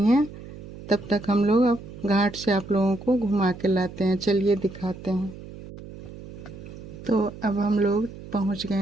हैं। तब तक हम लोग अब घाट से आप लोगों को घुमा के लाते हैं। चलिए दिखाते हैं। तो अब हम लोग पहुंच गए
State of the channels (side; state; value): right; noise; hum, 15 dB below the sound